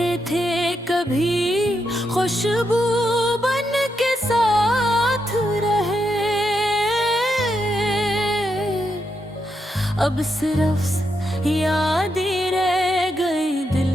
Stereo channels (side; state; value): both; normal; correlation 0.82